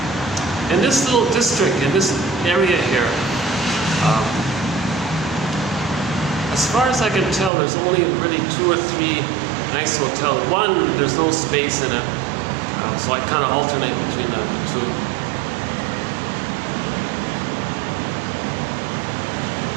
In this little district, in this area here, As far as I can tell, there's only really 2 or 3 nice hotels. One, there's no space in it, so I kind of alternate between the 2.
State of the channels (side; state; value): left; drops out; at 7.5 s